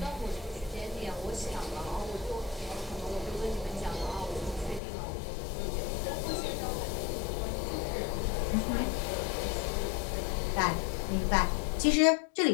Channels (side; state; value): right; drops out; at 4.8 s